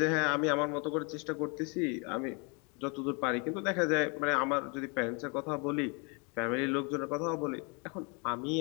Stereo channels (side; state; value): right; quieter; 33.4 dB